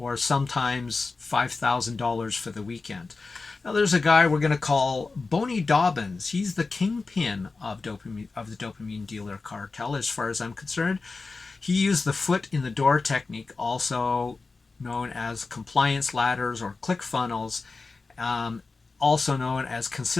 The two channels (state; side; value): quieter; right; 4.0 dB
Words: sometimes $5,000 for the weekend. Now there's a guy we're going to call Boney Dobbins. He's the kingpin of the dopamine dealer cartel, as far as I'm concerned. He used the foot in the door technique, also known as compliance ladders or click funnels, also known as